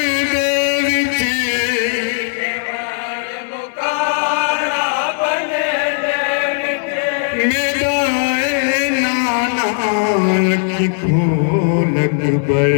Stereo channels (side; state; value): right; silent; digital silence